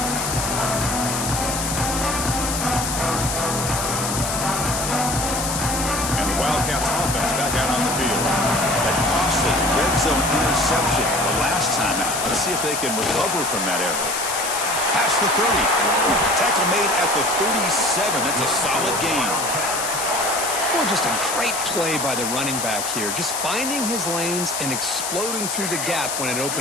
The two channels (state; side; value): noise; left; hiss, 3 dB below the sound